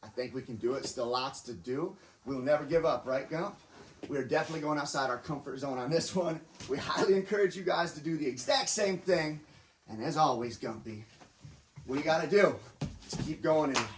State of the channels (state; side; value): identical; both; correlation 1.00